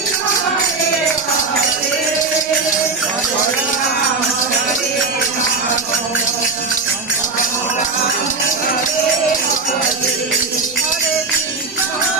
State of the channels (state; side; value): quieter; left; 4.1 dB